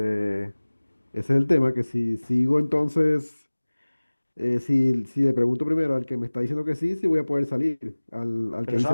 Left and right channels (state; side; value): inverted; both; correlation -1.00